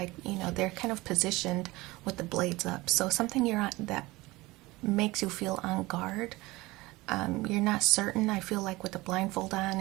they're kind of positioned with the blades up. So something you're on that makes you feel on guard. You're not certain. I feel like with the blindfold on,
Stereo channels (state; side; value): quieter; left; 20.9 dB